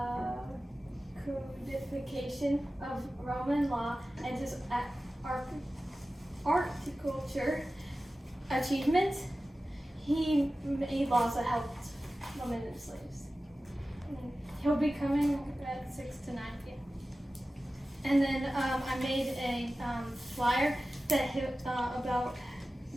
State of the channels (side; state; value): both; normal; correlation 0.95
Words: codification of Roman law and his horticulture achievements. He made laws that helped women and slaves. And he'll be coming at 6 to 9 p.m. And then I made a flyer that